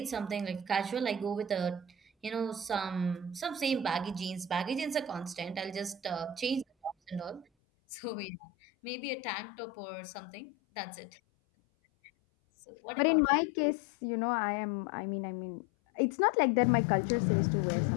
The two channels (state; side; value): drops out; right; at 7.5 s